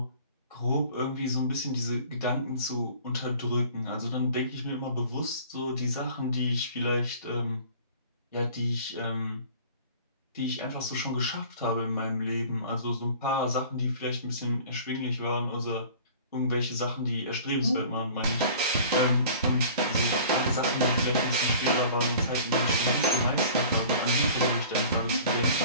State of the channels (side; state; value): both; inverted; correlation -0.46